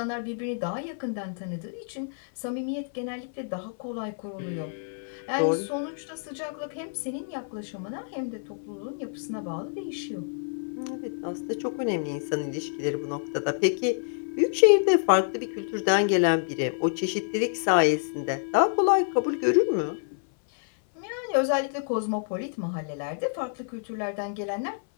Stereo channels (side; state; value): right; silent; 59 dB below the other